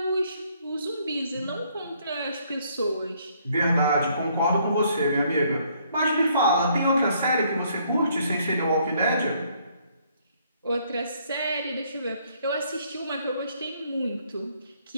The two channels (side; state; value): both; inverted; correlation -0.67